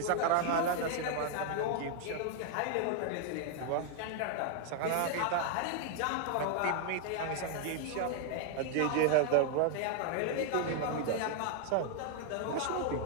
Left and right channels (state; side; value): different; both; correlation 0.00